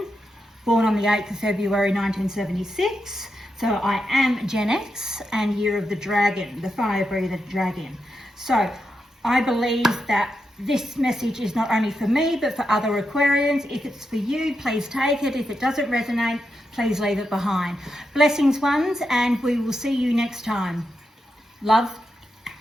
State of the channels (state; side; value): normal; both; correlation 0.86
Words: born on the 8th of February 1976, so I am Gen X and year of the dragon, the fire breather dragon. So I believe that this message is not only for me, but for other Aquarians. If it's for you, please take it. If it doesn't resonate, please leave it behind. Blessings, ones, and we will see you next time. Love,